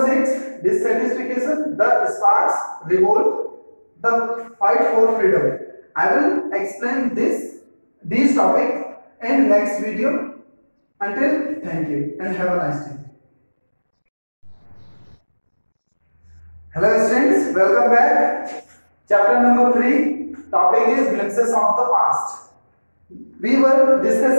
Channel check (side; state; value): both; inverted; correlation -1.00